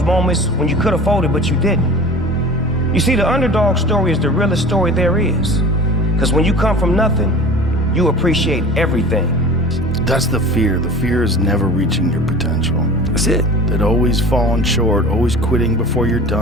moments when you could have folded, but you didn't. You see, the underdog story is the realest story there is. Because when you come from nothing, you appreciate everything. That's the fear. The fear is never reaching your potential. That's it. That always falling short, always quitting before you're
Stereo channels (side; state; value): both; normal; correlation 0.39